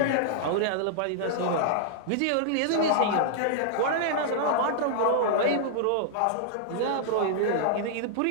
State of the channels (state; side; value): different; both; correlation -0.01